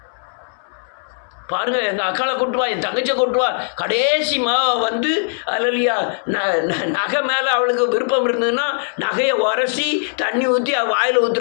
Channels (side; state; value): right; silent; 66 dB below the other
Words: பாருங்க, எங்கள் அக்காளை கொட்டுவா, என் தங்கச்சியை கொட்டுவா, கடைசி வந்து அல்லேலூயா நகை மேலே அவளுக்கு விருப்பம் இருந்ததுன்னா நகையை உரசி தண்ணி ஊற்றி அவள் வாயில்